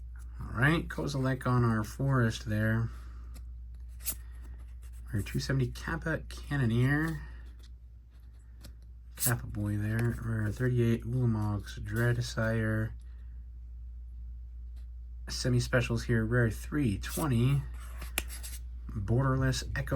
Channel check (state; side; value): identical; both; correlation 1.00